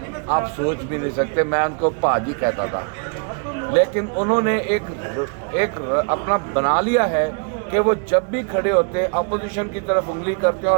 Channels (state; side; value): quieter; left; 38.2 dB